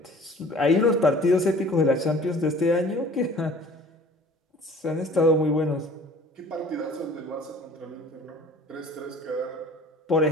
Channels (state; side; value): normal; both; correlation 0.48